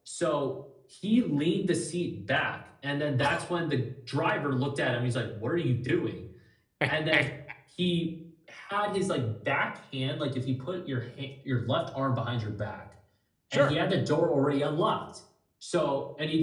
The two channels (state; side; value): identical; both; correlation 1.00